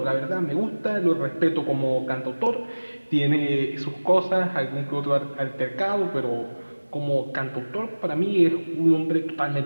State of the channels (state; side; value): inverted; both; correlation -1.00